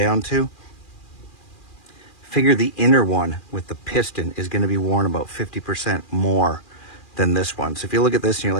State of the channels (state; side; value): late; right; 2.4 ms